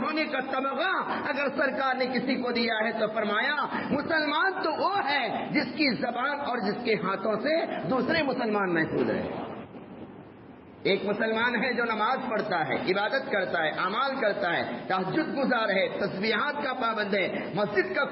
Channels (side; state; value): both; identical; correlation 1.00